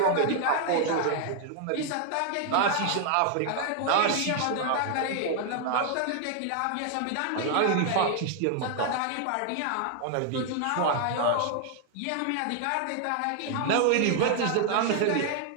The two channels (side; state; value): both; different; correlation 0.00